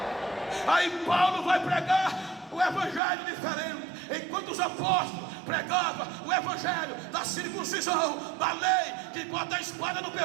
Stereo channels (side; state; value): left; drops out; at 3.0 s